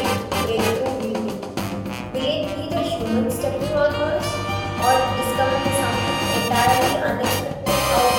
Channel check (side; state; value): both; identical; correlation 1.00